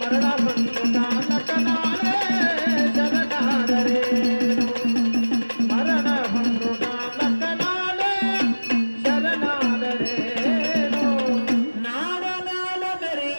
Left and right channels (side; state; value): both; inverted; correlation -1.00